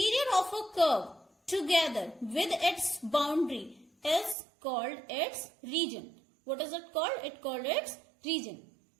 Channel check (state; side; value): drops out; left; at 4.4 s